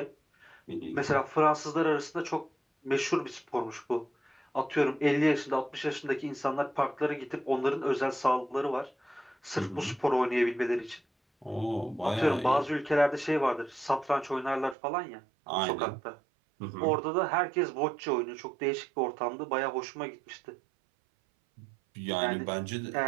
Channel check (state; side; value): drops out; left; at 14.8 s